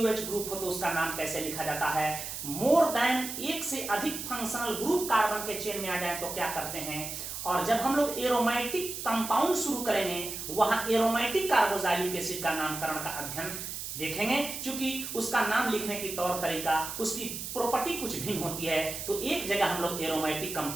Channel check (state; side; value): noise; right; hiss, 7 dB below the sound